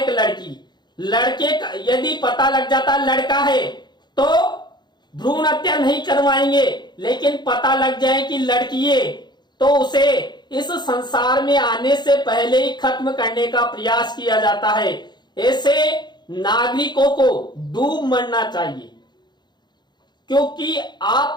लड़की। लड़के का यदि पता लग जाता लड़का है तो भ्रूण हत्या नहीं करवाएंगे, लेकिन पता लग जाए कि लड़की है तो उसे इस संसार में आने से पहले ही खत्म करने का प्रयास किया जाता है। ऐसे नागरिकों को डूब मरना चाहिए, क्योंकि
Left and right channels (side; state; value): right; late; 0.21 ms